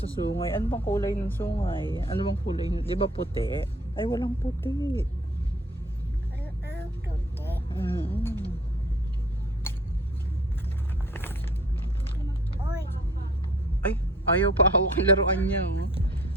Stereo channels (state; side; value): normal; both; correlation 0.54